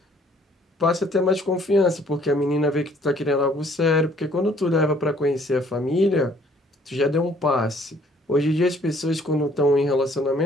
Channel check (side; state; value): both; normal; correlation 0.60